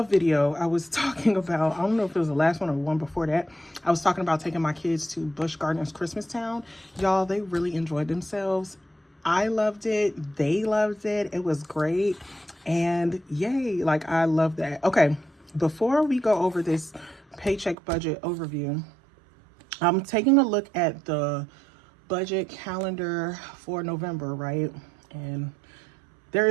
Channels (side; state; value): left; drops out; at 17.8 s